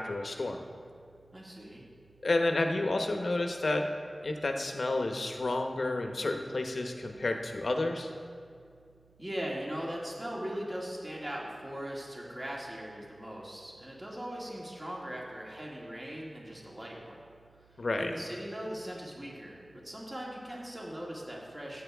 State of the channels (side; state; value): right; noise; hum, 27 dB below the sound